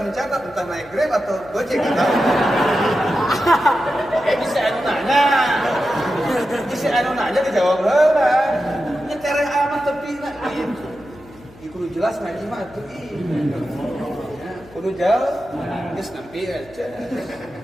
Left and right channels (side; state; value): left; noise; hum, 23 dB below the sound